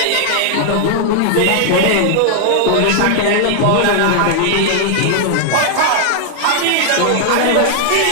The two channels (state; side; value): different; both; correlation 0.00